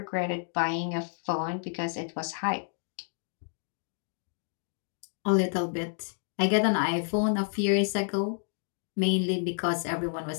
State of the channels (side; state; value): right; silent; 57 dB below the other